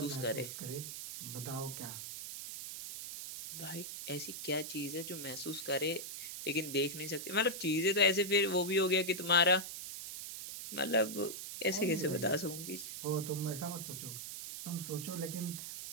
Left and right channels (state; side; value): noise; right; hiss, 8 dB below the sound